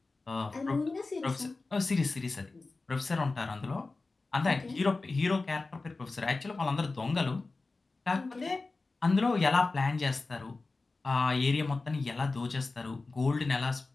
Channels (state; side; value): quieter; right; 3.6 dB